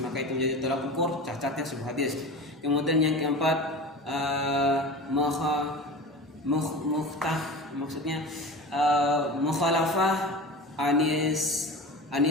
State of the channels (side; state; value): both; normal; correlation 0.32